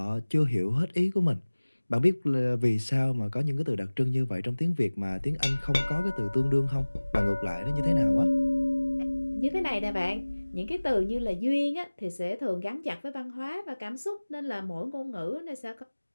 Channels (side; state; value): both; inverted; correlation -1.00